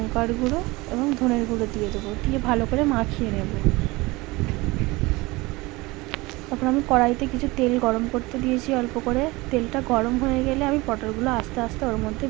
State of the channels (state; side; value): quieter; left; 22.4 dB